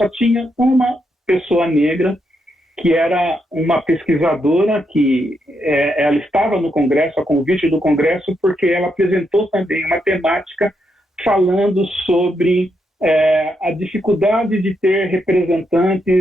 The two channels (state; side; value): normal; both; correlation 0.80